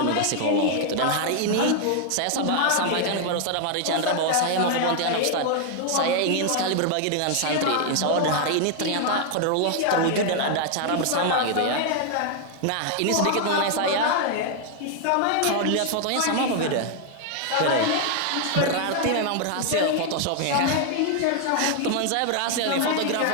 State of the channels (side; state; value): both; different; correlation 0.00